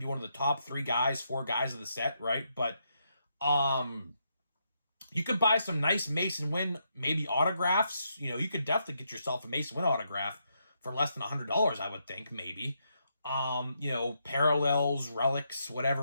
be one of the top 4 guys of the set, right? But you could buy some nice Mason Wynn, maybe autographs. You could definitely get yourself a Mason Wynn autograph for less than $100, I would think, maybe. Parallels, relics,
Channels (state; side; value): inverted; both; correlation -0.79